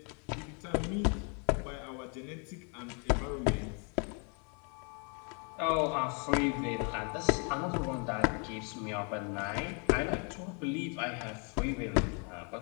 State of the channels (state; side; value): quieter; right; 37.3 dB